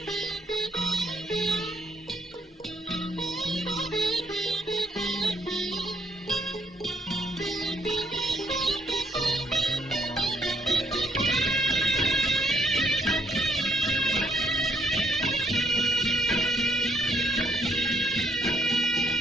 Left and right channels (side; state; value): both; normal; correlation 0.71